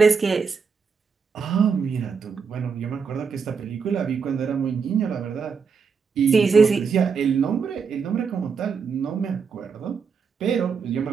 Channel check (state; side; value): quieter; left; 5.7 dB